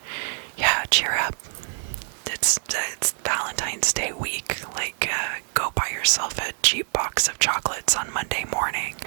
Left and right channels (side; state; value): left; silent; digital silence